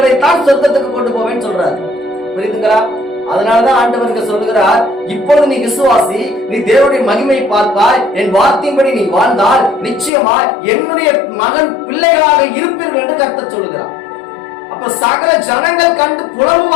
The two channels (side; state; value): right; drops out; at 10.1 s